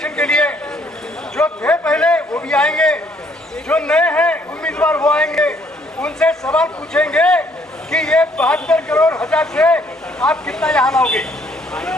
के लिए, जो थे पहले वो भी आएंगे, जो नए हैं उम्मीदवार वो आएंगे, उनसे सवाल पूछेंगे कि ये 72 करोड़ हजार से आप कितना यहाँ लाओगे।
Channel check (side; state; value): both; normal; correlation 0.66